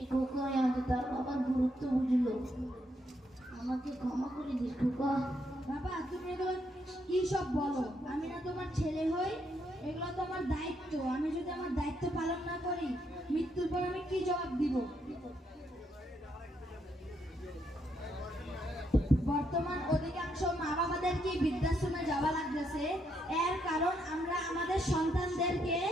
খোকায় আজ তার বাবার গুরুত্ব বুঝলো। আমাকে ক্ষমা করে দিস খোকা। বাবা, তুমি এগুলো কি সব বলো? আমি না তোমার ছেলে হই? এগুলো তো আমার দায়িত্ব। আমি যদি আমার দায়িত্ব পালন না করি, মৃত্যুর পর আমি কি জবাব দিব? বর্তমান অধিকাংশ মা বাবাদেরকে বৃদ্ধাশ্রমে যাওয়া লাগতেছে, এর কারণ আমরা আমাদের সন্তানদেরকে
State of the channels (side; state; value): both; normal; correlation 0.76